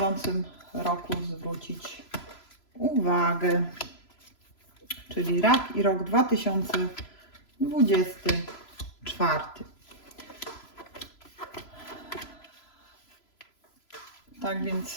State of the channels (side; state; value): right; late; 3.0 ms